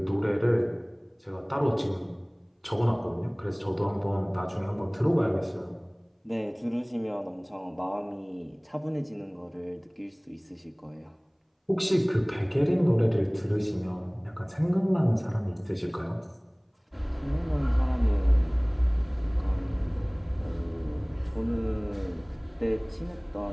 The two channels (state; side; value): identical; both; correlation 1.00